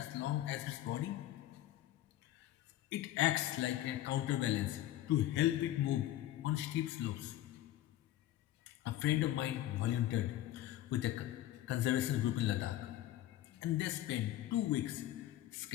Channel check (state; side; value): quieter; right; 13.9 dB